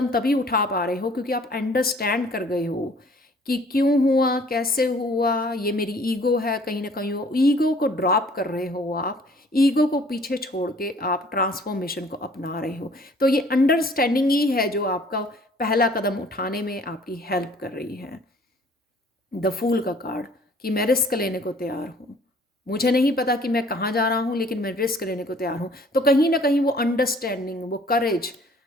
तभी उठा पा रहे हो क्योंकि आप अंडरस्टैंड कर गए हो कि क्यों हुआ, कैसे हुआ, ये मेरी ईगो है। कहीं ना कहीं वो ईगो को ड्रॉप कर रहे हो आप, ईगो को पीछे छोड़ के आप ट्रांसफॉर्मेशन को अपना रहे हो। तो ये अंडरस्टैंडिंग ही है जो आपका पहला कदम उठाने में आपकी हेल्प कर रही है। द फूल का कार्ड, कि मैं रिस्क लेने को तैयार हूँ, मुझे नहीं पता कि मैं कहाँ जा रहा हूँ, लेकिन मैं रिस्क लेने को तैयार हूँ। तो कहीं ना कहीं वो अंडरस्टैंडिंग, वो करेज,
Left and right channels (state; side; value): normal; both; correlation 0.55